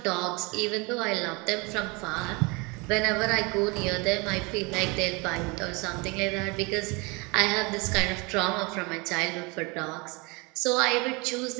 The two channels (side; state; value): left; quieter; 27.7 dB